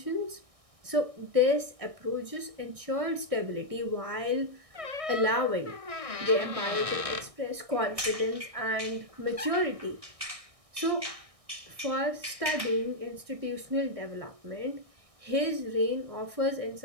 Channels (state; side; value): late; left; 1.6 ms